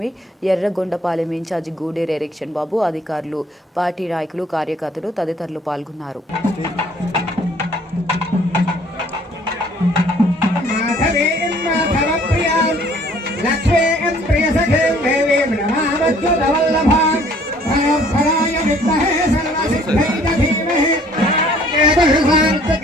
Yerragondapalem incharge Guderu Erikshan Babu, అధికారులు, పార్టీ నాయకులు, కార్యకర్తలు తదితరులు పాల్గొన్నారు. लक्ष्मीं प्रियसखीं देवीं नमामच्युतवल्लभां भयोत्फलाय विद्महे सर्वसिद्धिं धीमहि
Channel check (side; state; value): both; normal; correlation 0.58